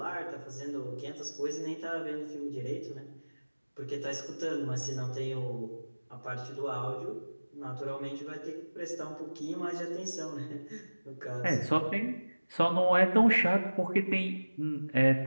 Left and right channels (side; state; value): both; inverted; correlation -1.00